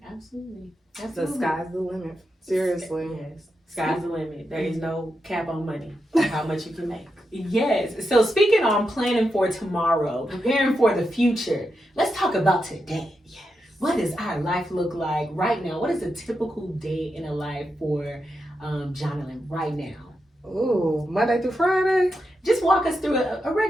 absolutely. The sky's the limit. Seriously. Yes. Sky's the limit. There is no cap on money, how much you can make. Yes. So speaking on planning for tomorrow, preparing for the future, let's talk about today. Yes. What does our life look like right now? What is a typical day in a life for Johnolyn right now? Ooh, Monday through Friday? Just walk us through a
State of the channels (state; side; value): normal; both; correlation 0.86